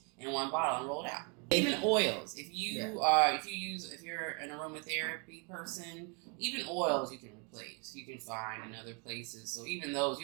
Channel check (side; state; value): left; quieter; 35.0 dB